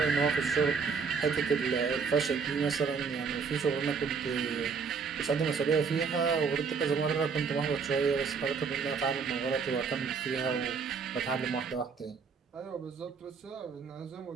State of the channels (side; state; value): left; quieter; 5.5 dB